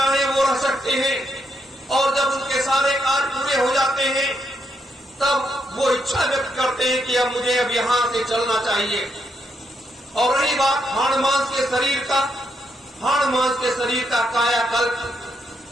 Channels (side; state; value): both; normal; correlation 0.78